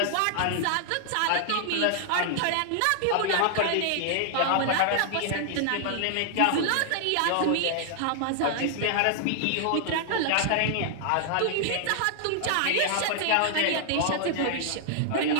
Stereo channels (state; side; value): different; both; correlation -0.01